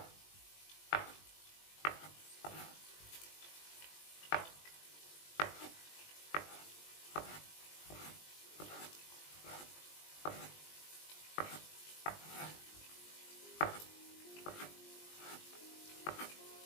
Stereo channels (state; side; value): late; right; 20 ms